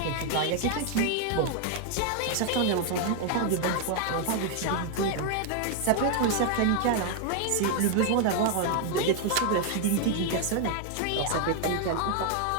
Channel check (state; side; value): different; both; correlation 0.00